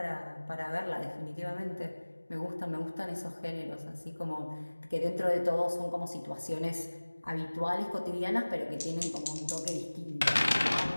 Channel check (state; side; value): inverted; both; correlation -1.00